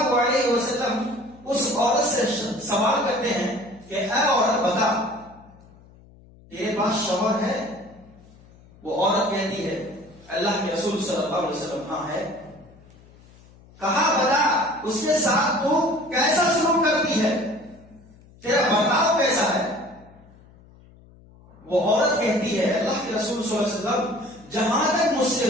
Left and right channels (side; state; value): left; noise; hum, 25 dB below the sound